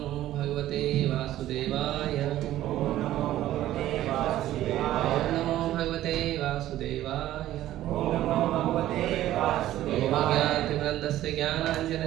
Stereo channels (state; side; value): quieter; left; 13.8 dB